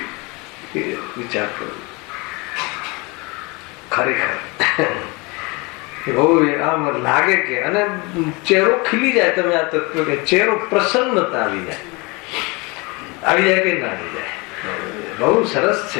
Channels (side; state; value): right; quieter; 27.2 dB